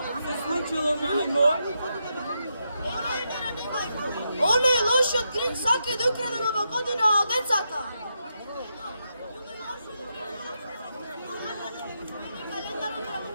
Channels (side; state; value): both; inverted; correlation -0.84